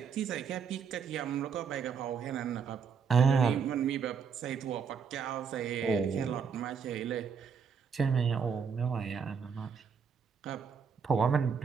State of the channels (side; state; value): left; quieter; 6.3 dB